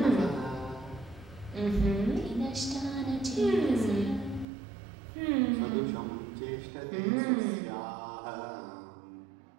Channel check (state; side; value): drops out; left; at 4.5 s